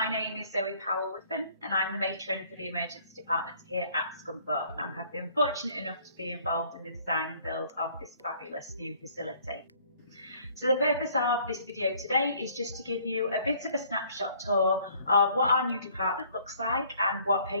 name is Zoe Powell-Wiffen and I'm the matron for the emergency department here at Scunthorpe and have been fortunate enough to be involved in the design and build of this fabulous new facility. So the purpose of this video today is just to give you a bit of a snapshot tour of what our new department looks like and what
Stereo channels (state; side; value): inverted; both; correlation -0.60